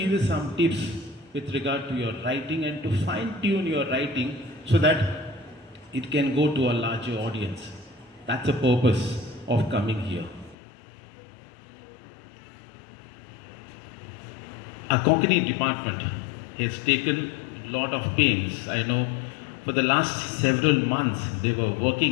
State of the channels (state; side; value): drops out; right; at 10.6 s